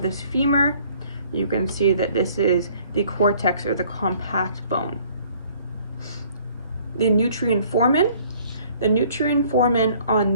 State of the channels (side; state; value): both; inverted; correlation -0.58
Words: this femur, you can see that this is the cortex or the compact bone. The nutrient foramen. The nutrient foramen on